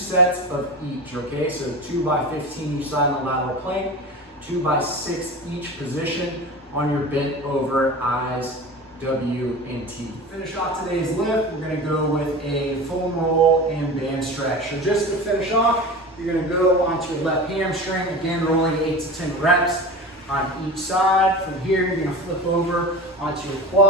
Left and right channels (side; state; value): both; normal; correlation 0.31